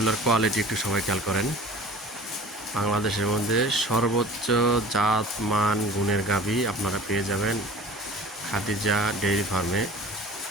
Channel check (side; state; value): both; normal; correlation 0.43